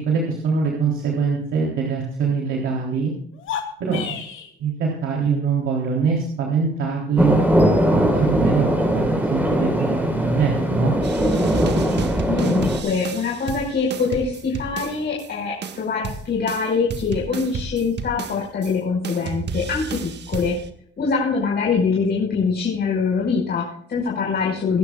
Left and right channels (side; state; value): both; normal; correlation 0.56